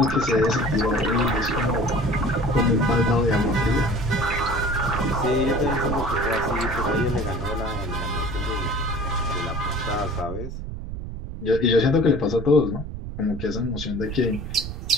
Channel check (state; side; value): noise; right; rumble, 7 dB below the sound